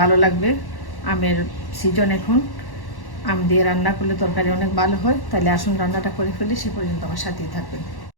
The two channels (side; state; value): right; late; 1.1 ms